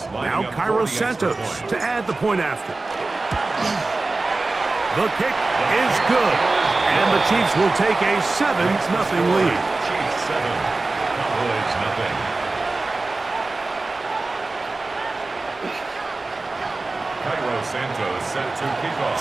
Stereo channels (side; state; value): left; quieter; 3.4 dB